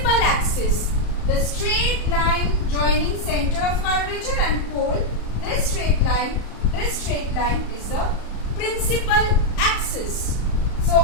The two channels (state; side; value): late; right; 34 ms